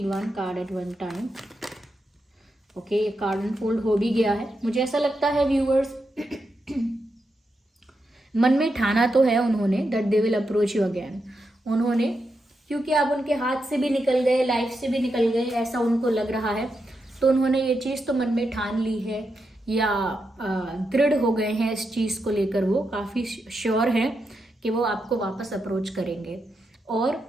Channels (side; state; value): both; normal; correlation 0.85